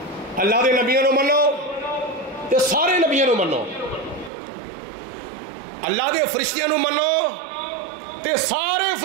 اللہ دے نبیوں نو منو تے سارے نبیوں نو منو اللہ دے فرشتیاں نو منو تے سارے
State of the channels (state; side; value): drops out; left; at 4.3 s